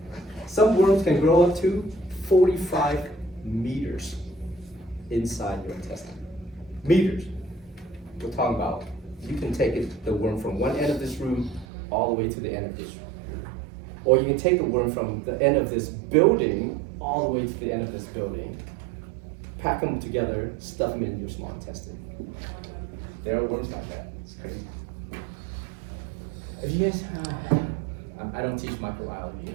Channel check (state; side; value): drops out; left; at 11.7 s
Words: Some worms can grow up to 45 meters inside your intestine. Meters. We're talking about, you can take the worm from one end of this room all the way to the end of this room. Or you can take the worm from the end of this building all the way to the end of this building, pack them together, stuff them in your small intestine. There are worms like that. It's crazy. If you guys, I don't teach microbiology.